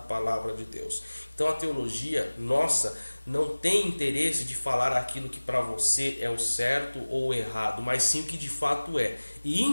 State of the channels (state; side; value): inverted; both; correlation -1.00